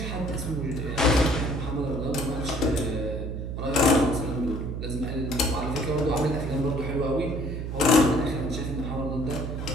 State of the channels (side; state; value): right; noise; hum, 4 dB below the sound